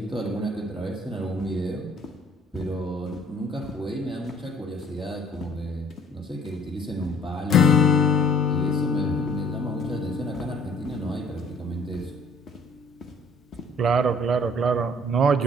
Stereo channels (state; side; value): normal; both; correlation 0.56